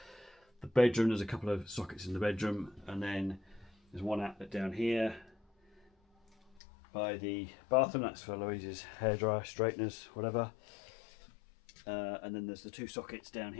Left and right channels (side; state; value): right; drops out; at 6.6 s